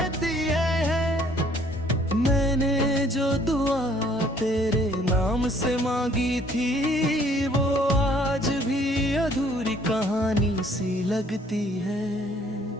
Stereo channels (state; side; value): normal; both; correlation 0.60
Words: है। मैंने जो दुआ तेरे नाम से मांगी थी, वो आज भी अधूरी कहानी सी लगती है।